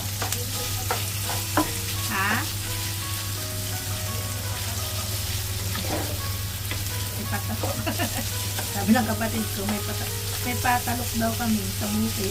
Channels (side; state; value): both; identical; correlation 1.00